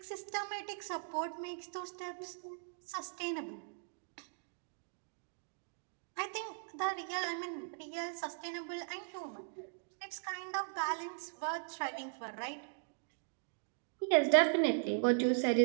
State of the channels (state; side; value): silent; left; digital silence